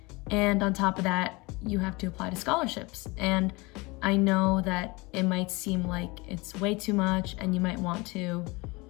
and on top of that, you have to apply to scholarships. And I know that it might seem like it's way too much and you might want to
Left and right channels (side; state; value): right; quieter; 24.9 dB